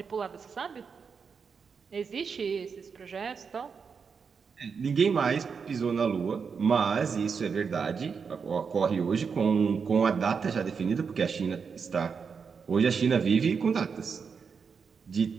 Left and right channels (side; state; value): left; quieter; 5.9 dB